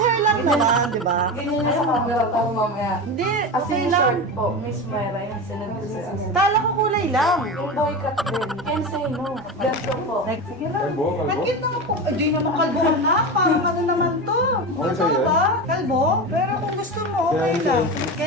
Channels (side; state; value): both; normal; correlation 0.23